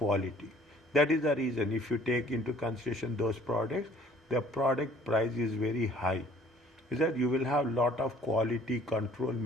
That is the reason. If you take into consideration those products, the product price is very high. Is that you will have lot of quality control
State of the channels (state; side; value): normal; both; correlation 0.56